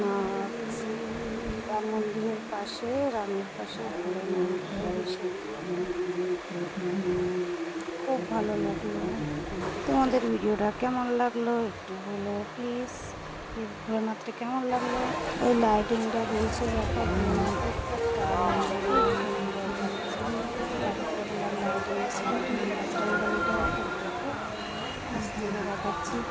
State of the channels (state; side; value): identical; both; correlation 1.00